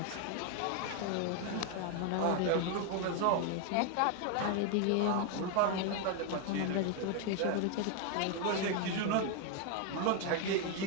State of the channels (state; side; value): different; both; correlation 0.01